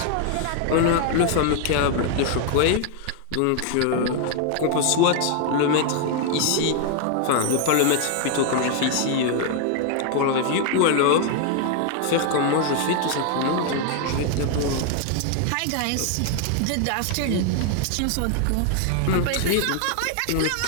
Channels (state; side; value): different; both; correlation 0.00